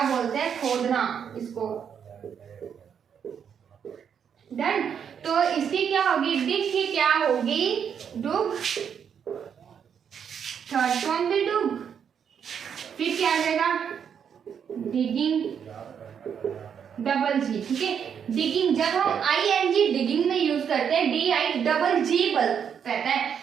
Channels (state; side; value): quieter; left; 7.7 dB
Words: बोलते हैं, खोदना इसको। डन। तो इसकी क्या होगी, डिग की क्या होगी, डुग, थर्ड फॉर्म भी डुग। फिर क्या आ जाएगा, डिगिंग, डबल जी, ठीक है। डिगिंग, जब हम ING डिगिंग में यूज करते हैं, DIGG रहता है,